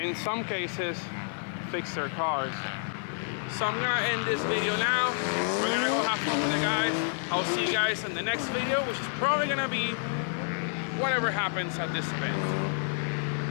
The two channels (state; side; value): silent; right; digital silence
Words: in some cases fix their cars. So I'm gonna end this video now. We're gonna go have fun with the guys. I'll see you guys in the next video, which is probably gonna be whatever happens at this